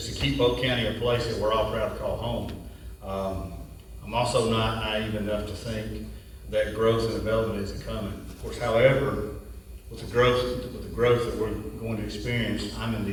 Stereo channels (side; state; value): both; identical; correlation 1.00